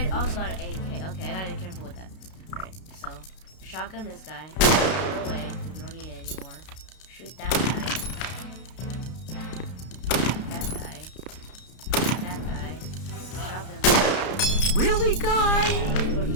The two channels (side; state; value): right; late; 32 ms